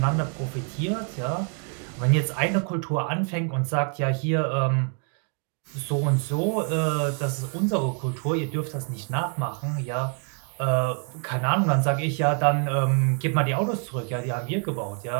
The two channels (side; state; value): left; quieter; 39.9 dB